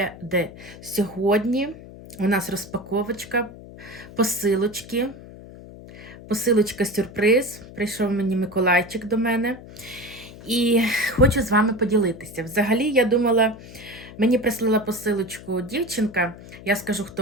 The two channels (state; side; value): noise; left; hum, 17 dB below the sound